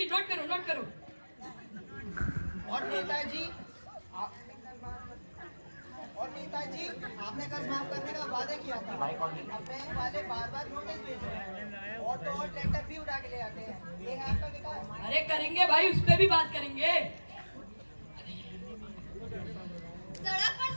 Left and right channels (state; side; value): inverted; both; correlation -1.00